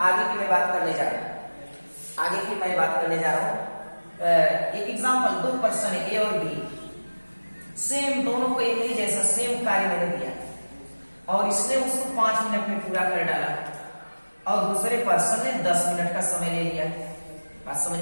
आगे की मैं बात करने जा रहा हूं, एक एग्जांपल, दो पर्सन है ए और बी, सेम दोनों को एक ही जैसा सेम कार्य मैंने दिया और इसने उसको 5 मिनट में पूरा कर डाला और दूसरे पर्सन ने 10 मिनट का समय ले लिया। बात समझ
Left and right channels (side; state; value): both; inverted; correlation -1.00